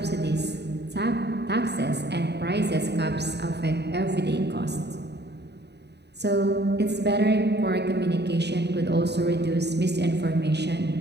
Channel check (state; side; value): late; left; 0.49 ms